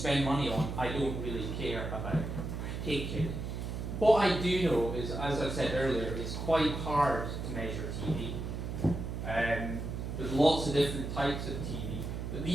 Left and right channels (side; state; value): right; noise; hum, 5 dB below the sound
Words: money on, I don't really care about particularly. What I do know is, as I said earlier, it's quite hard to measure TV. There's lots of different types of TV, but